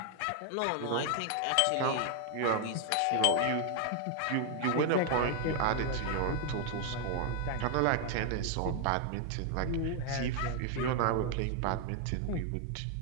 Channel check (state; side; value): different; both; correlation 0.00